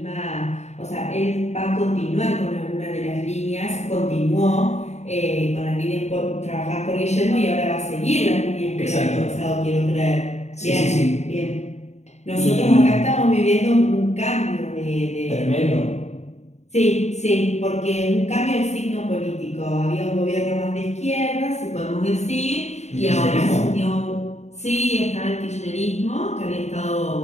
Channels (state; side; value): late; right; 0.32 ms